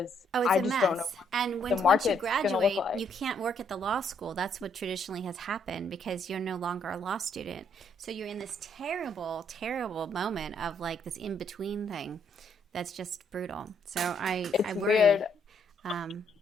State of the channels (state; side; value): normal; both; correlation 0.70